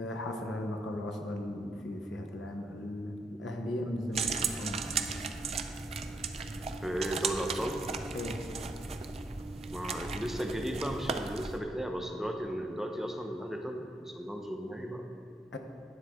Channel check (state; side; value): normal; both; correlation 0.76